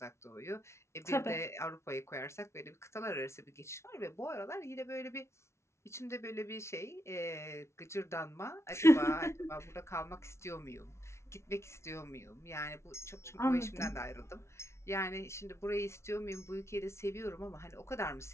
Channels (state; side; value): late; right; 0.13 ms